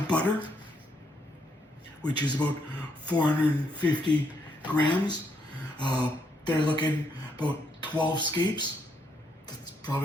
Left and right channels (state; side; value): normal; both; correlation 0.75